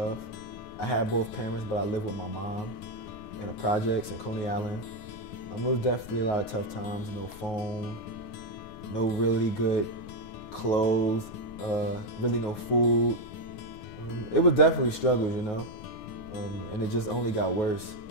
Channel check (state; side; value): late; right; 9.4 ms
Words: I had both parents, but I lived with my mom in the projects in Coney Island. It was definitely a lot of tough times. No phone, no really good clothes, really no food. It was definitely struggles, you know, and it just only got worse,